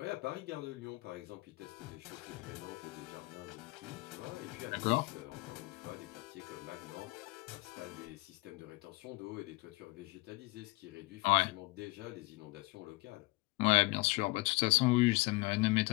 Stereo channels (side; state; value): right; quieter; 23.7 dB